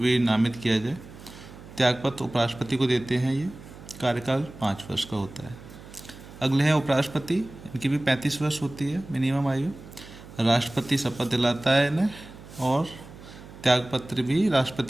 नामित किया जाए। त्यागपत्र उपराष्ट्रपति को देते हैं। ये कार्यकाल 5 वर्ष का होता है। अगले हैं उपराष्ट्रपति। इनकी भी 35 वर्ष होती है मिनिमम आयु। राष्ट्रपति शपथ दिलाता है इन्हें और त्यागपत्र भी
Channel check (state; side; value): noise; right; hum, 17 dB below the sound